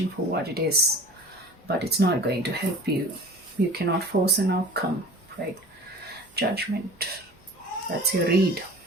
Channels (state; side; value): normal; both; correlation 0.41